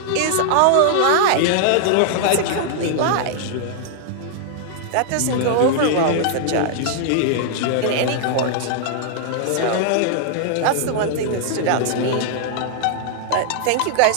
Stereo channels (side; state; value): both; different; correlation -0.01